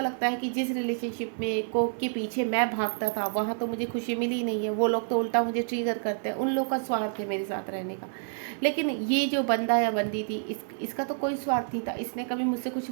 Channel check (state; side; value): silent; left; 59 dB below the other